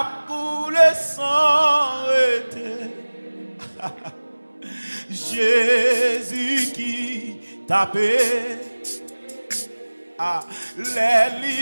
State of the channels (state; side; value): inverted; both; correlation -1.00